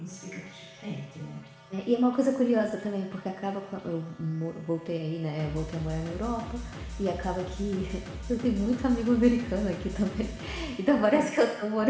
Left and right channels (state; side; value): identical; both; correlation 1.00